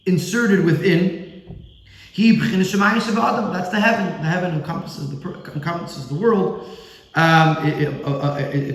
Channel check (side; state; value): both; identical; correlation 1.00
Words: inserted within. That's the heaven. The heaven encompasses the world.